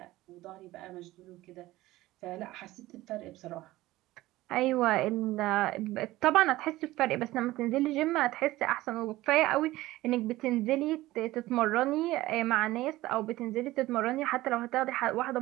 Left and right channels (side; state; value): left; quieter; 17.4 dB